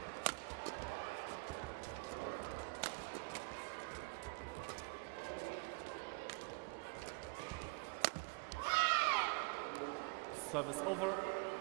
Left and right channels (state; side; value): quieter; left; 28.2 dB